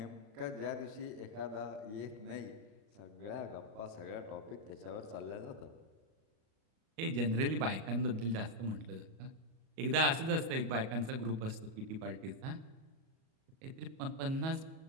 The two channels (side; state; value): left; late; 37 ms